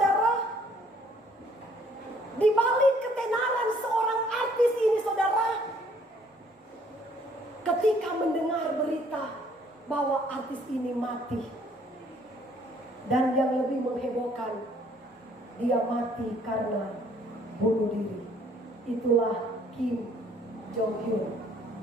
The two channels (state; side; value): normal; both; correlation 0.61